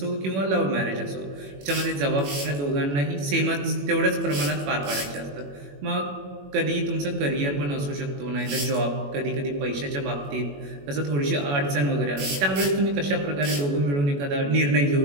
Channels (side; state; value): left; late; 21 ms